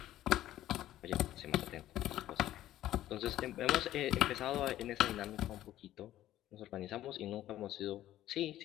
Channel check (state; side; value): quieter; right; 13.6 dB